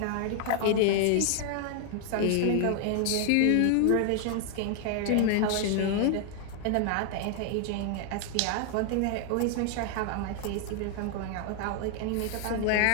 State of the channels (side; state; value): both; different; correlation 0.00